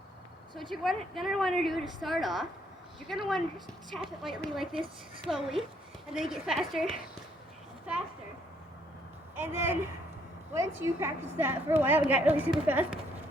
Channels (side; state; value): both; normal; correlation 0.68